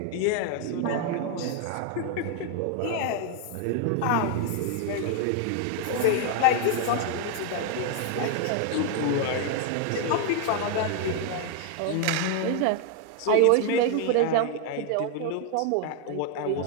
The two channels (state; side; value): different; both; correlation 0.00